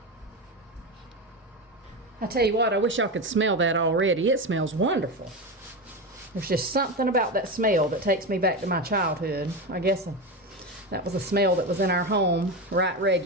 I tell you what, I wish y'all could smell that already. It smells wonderful. There's just something about that smell that takes me back to my childhood. I guess that was a smell that was in our home, right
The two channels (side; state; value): both; normal; correlation 0.18